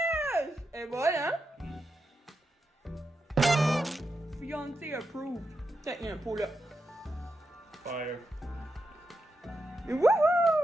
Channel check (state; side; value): normal; both; correlation 0.87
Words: Et voilà! Fiancé approved. Tiens, il y a un pot là. Fire.